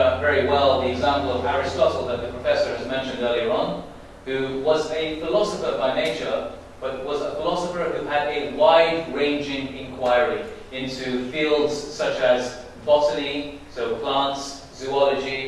well the example of Aristotle that the professor has mentioned earlier on, who was a philosopher by nature, but was a philosopher who had a wide-ranging inquiry into fields such as botany, so plants,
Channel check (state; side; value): identical; both; correlation 1.00